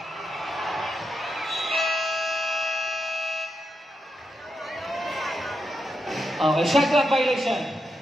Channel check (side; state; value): both; normal; correlation 0.84